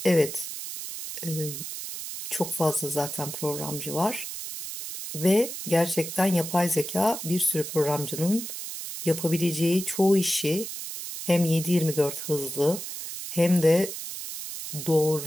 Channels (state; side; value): noise; right; hiss, 8 dB below the sound